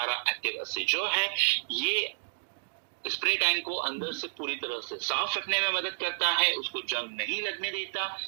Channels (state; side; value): silent; left; digital silence